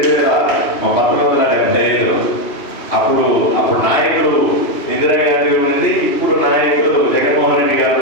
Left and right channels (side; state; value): right; late; 2.8 ms